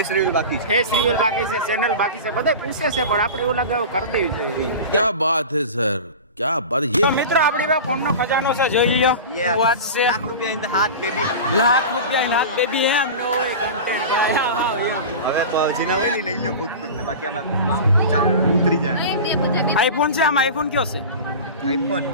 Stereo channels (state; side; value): inverted; both; correlation -0.30